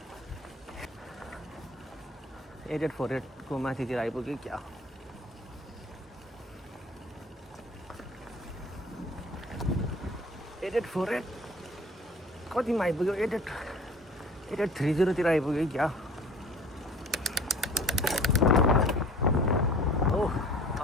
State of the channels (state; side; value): normal; both; correlation 0.47